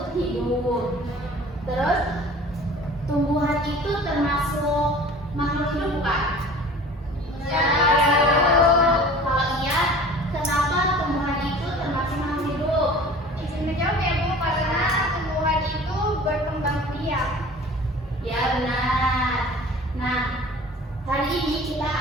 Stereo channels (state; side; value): normal; both; correlation 0.44